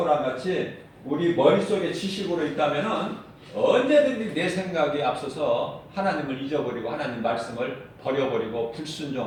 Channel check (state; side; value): identical; both; correlation 1.00